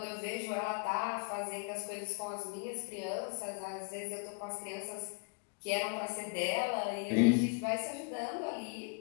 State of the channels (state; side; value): quieter; right; 37.1 dB